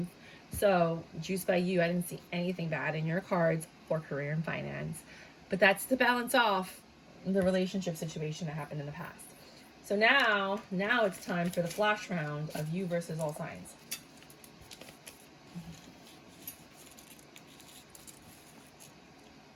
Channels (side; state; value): both; identical; correlation 1.00